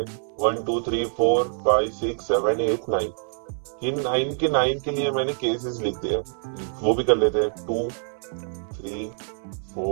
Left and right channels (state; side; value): silent; left; digital silence